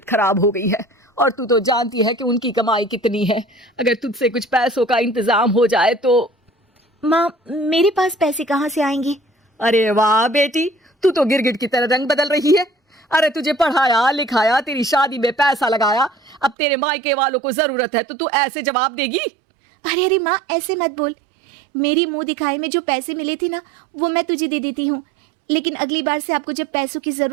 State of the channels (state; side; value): drops out; left; at 16.6 s